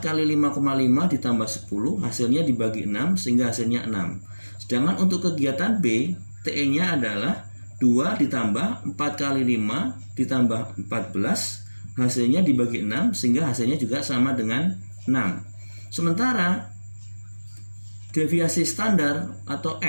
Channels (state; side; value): inverted; both; correlation -1.00